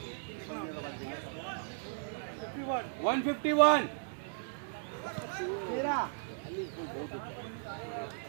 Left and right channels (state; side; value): silent; left; digital silence